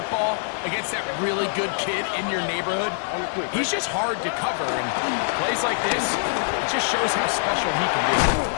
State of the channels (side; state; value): right; silent; digital silence